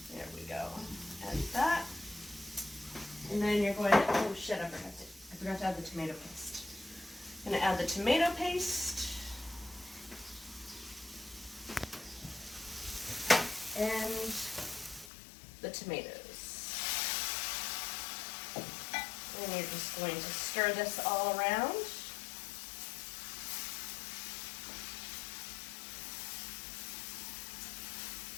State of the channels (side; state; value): right; drops out; at 15.1 s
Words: there we go. Add that. And then you're going to, oh shit, I forgot to add the tomato paste. I'm going to add the tomato paste. And the tomatoes. And you're just going to stir this all around.